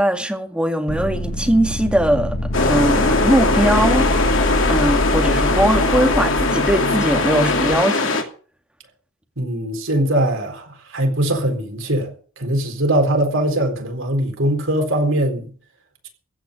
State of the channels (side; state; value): both; normal; correlation 0.50